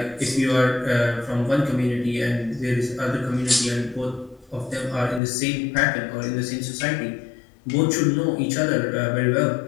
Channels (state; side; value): drops out; right; at 5.2 s